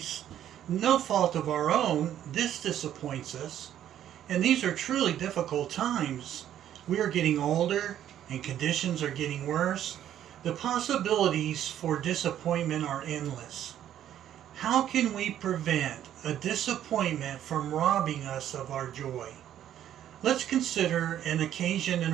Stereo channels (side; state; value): left; quieter; 11.0 dB